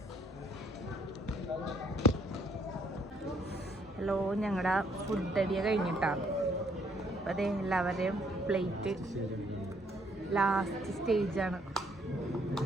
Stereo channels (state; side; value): normal; both; correlation 0.67